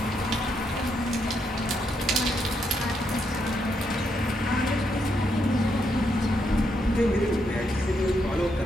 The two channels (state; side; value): normal; both; correlation 0.78